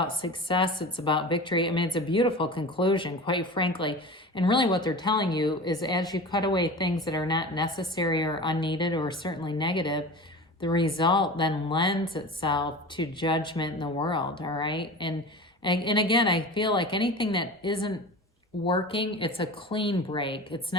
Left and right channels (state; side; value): normal; both; correlation 0.34